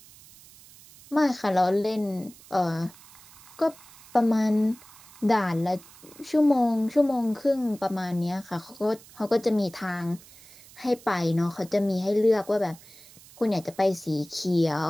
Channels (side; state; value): right; noise; hiss, 22 dB below the sound